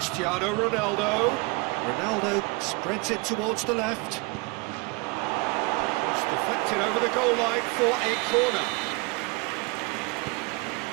Ronaldo. Ronaldo spreads it towards the left. It's deflected over the goal line for a corner.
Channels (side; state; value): left; quieter; 27.6 dB